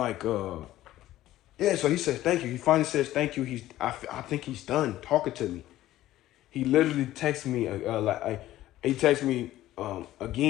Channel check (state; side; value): quieter; right; 14.6 dB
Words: yeah. So he says thank you. He finally says thank you. I think he's done talking to me. He literally texted me he texted me